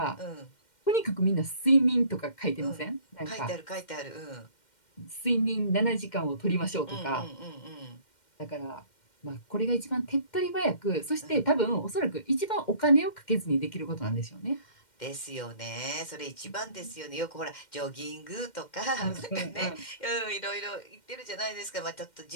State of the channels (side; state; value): right; late; 2.1 ms